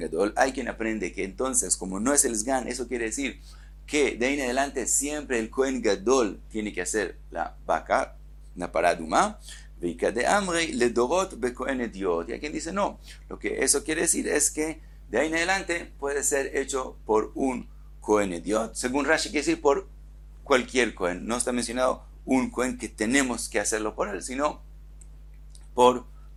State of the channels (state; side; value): identical; both; correlation 1.00